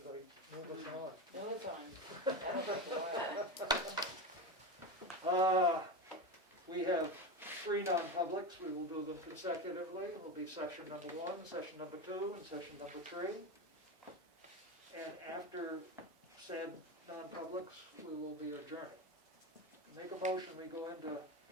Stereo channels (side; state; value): both; normal; correlation 0.19